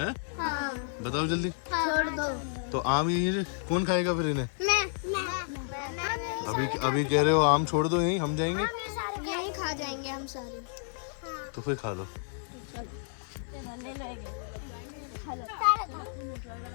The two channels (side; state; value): right; silent; 57 dB below the other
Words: बताओ जल्दी। छोड़ दो। तो आम यहीं कौन खाएगा फिर इन्हें? मैं अभी कह रहे हो आम छोड़ दो यहीं, हम जाएंगे। यही खा जाएंगे हम सारे। तो फिर खा लो।